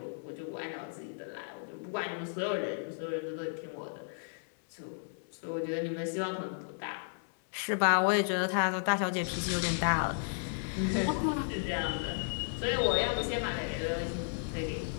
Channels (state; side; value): silent; right; 55 dB below the other